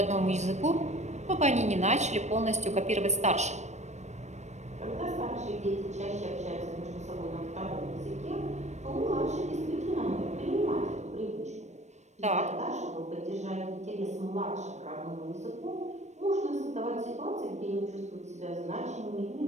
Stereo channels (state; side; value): late; left; 0.33 ms